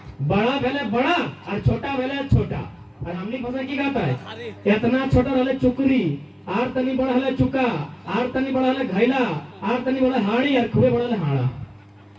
बड़ा वाला बड़ा और छोटा वाला छोटा। और हमने भाषा की कहता है इतना छोटा रहले चुकरी, आर तनी बड़ा हले चुका, आर तनी बड़ा हले घैला, आर तनी बड़ा हाड़ी और खूबे बड़ा हले हाड़ा।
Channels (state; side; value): identical; both; correlation 1.00